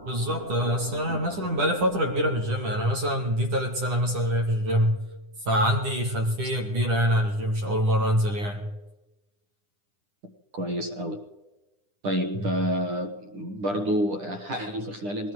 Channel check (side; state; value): left; late; 10 ms